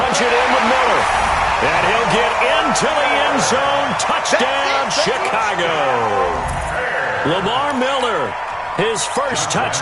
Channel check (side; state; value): both; identical; correlation 1.00